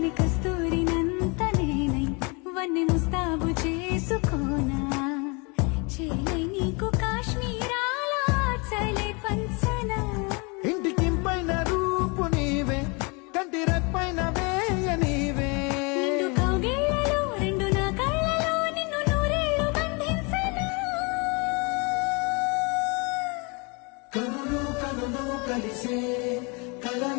గాలి కస్తూరినంత నేనై వన్నె ముస్తాబు చేసుకోనా చేలే నీకు కాశ్మీరాల చలే పంచనా ఇంటికింపైన రూపు నీవే కంటి రెప్పైన వేయ నీవే నిండు కౌగిళ్ళలో రెండు నా కళ్ళలో నిన్ను నూరేళ్లు బంధించనా కనులు కనులు కలిసే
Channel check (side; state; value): right; quieter; 30.6 dB